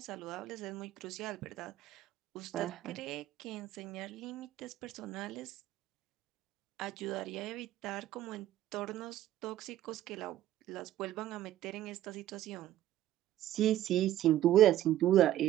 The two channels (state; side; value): quieter; left; 13.0 dB